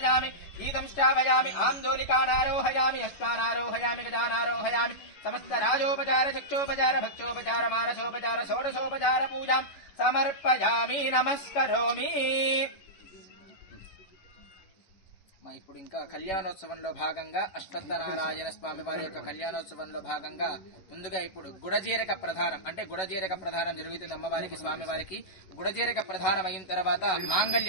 గీతం శ్రావయామి. ఆందోళికానారోహయామి. అశ్వానారోహయామి. గజానారోహయామి. సమస్త రాజోపచార చక్షోపచార భక్షోపచార మానసోపచార షోడశోపచార పూజాం సమర్పయామి. నమస్కరోమి. ఇప్పుడు ఇంకా కళ్యాణోత్సవంలో భాగంగా అశ్వత్థనారాయణ స్వామి వారి యొక్క కళ్యాణోత్సవంలో భాగంగా ముందుగా ఇప్పుడు గుడజీరక ప్రధానం, అంటే గుడజీరక ప్రధానం జరుగుతుంది అమ్మవారికి స్వామివారికి. గుడజీరక ప్రధానం అయిన తర్వాత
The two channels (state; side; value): late; right; 11 ms